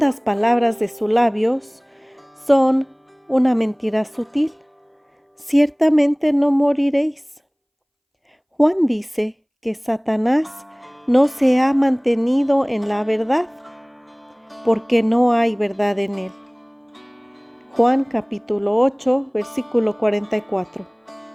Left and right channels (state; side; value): identical; both; correlation 1.00